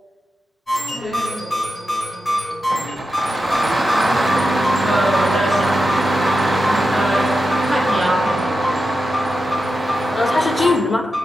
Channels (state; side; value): normal; both; correlation 0.90